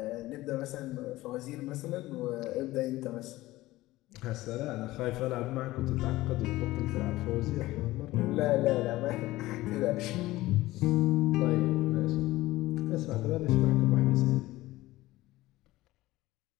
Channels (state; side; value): quieter; right; 17.7 dB